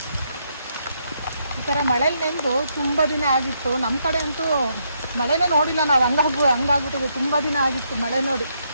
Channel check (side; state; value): both; inverted; correlation -0.76